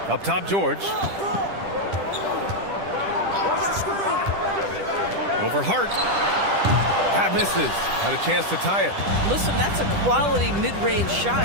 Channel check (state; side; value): late; left; 10 ms